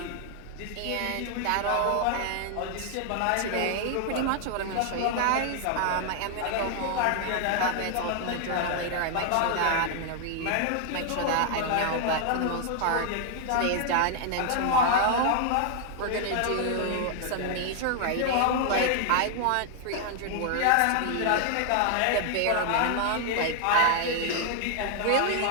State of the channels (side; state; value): both; different; correlation 0.00